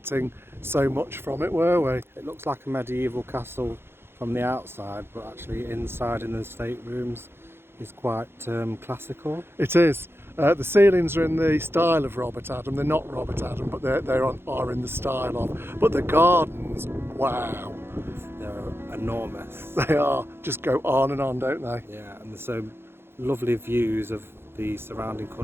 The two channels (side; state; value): left; late; 0.11 ms